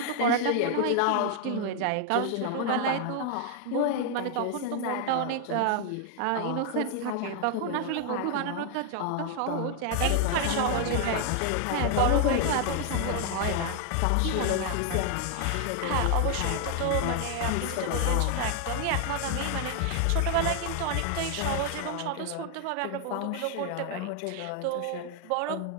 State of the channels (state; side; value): different; both; correlation 0.00